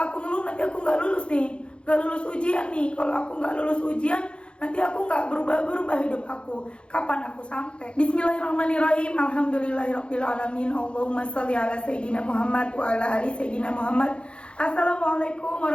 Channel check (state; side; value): late; right; 0.057 ms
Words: ngeluh nanti aku nggak lulus nih, nggak lulus ujian nih. Kalau aku nggak lulus ujian, nanti aku nggak berubah hidup aku. Kapan aku sampai? Bismillahirrahmanirrahim. Alhamdulillahirrahmanirrahim. Allahumma sholli ala Sayyidina Muhammad wa ala ali Sayyidina Muhammad. Assalamualaikum